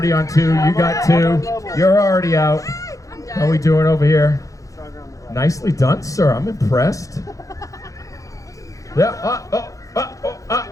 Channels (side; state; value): right; late; 0.16 ms